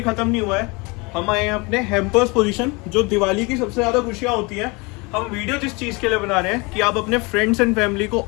ख़त्म नहीं हुआ है। हम आए हैं अपने हैम्पर्स पोजीशन, जो दिवाली की सबसे ज़्यादा खुशियाँ होती हैं। हम वीडियो जिस चीज़ के लिए बना रहे हैं कि आप अपने फ्रेंड्स एंड फैमिली को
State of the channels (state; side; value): quieter; right; 27.3 dB